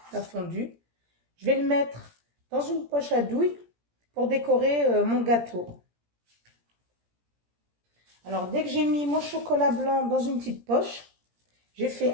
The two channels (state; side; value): late; left; 17 ms